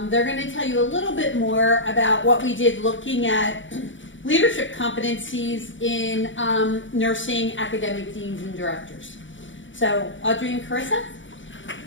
they're going to tell you a little bit more about what we did looking at leadership competencies in nursing academic deans and directors. So, Audrey and Carissa?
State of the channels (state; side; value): late; right; 0.56 ms